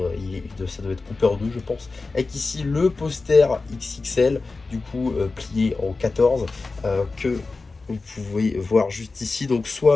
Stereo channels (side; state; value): right; quieter; 3.8 dB